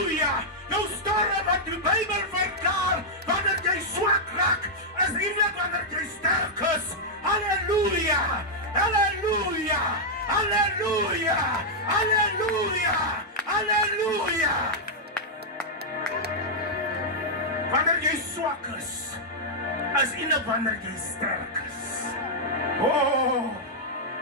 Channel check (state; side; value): normal; both; correlation -0.06